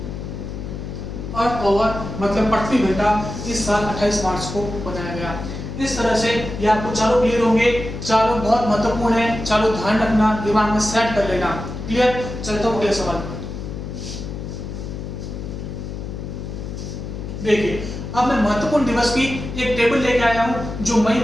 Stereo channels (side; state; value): left; noise; hum, 7 dB below the sound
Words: अर्थ आवर मतलब पृथ्वी घंटा इस साल 28 मार्च को बनाया गया। इस तरह से ये आपको चारों क्लियर होंगे। चारों बहुत महत्वपूर्ण है, चारों ध्यान रखना, दिमाग में सेट कर लेना। क्लियर? चलता हूं अगले सवाल पर। देखिए, अब मैं महत्वपूर्ण दिवस की एक टेबल लेके आया हूं जो मई